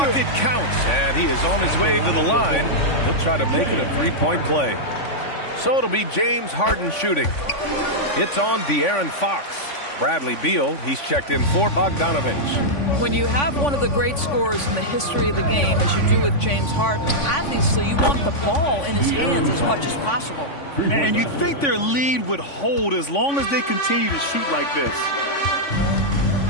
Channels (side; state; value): right; late; 3.5 ms